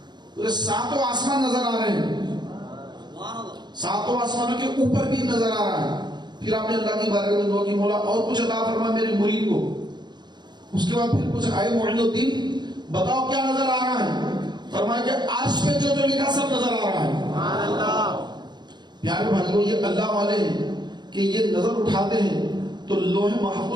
ساتوں آسمان نظر آ رہے ہیں، ساتوں آسمانوں کے اوپر بھی نظر آ رہا ہے۔ پھر آپ نے اللہ کی بارگاہ میں دعا کی، مولا اور کچھ عطا فرما میرے مرید کو۔ اس کے بعد پھر پوچھا اے معین الدین بتاؤ کیا نظر آ رہا ہے؟ فرمایا کہ عرش پہ جو لکھا سب نظر آ رہا ہے۔ پیارے بھائیوں، یہ اللہ والے ہیں کہ یہ نظر اٹھاتے ہیں تو لوح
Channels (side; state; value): left; late; 0.21 ms